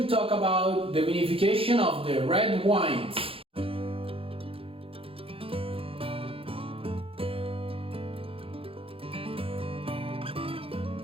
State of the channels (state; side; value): late; left; 0.27 ms